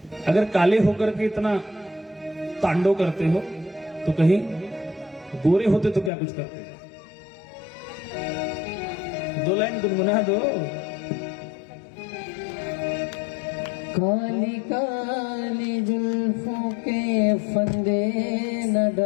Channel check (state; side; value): drops out; right; at 6.1 s